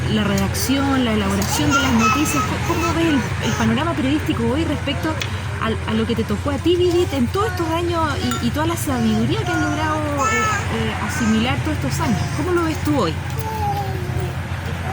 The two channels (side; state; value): both; identical; correlation 1.00